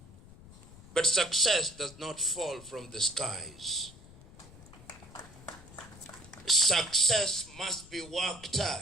But success does not fall from the skies. Success must be worked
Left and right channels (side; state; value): left; noise; rumble, 20 dB below the sound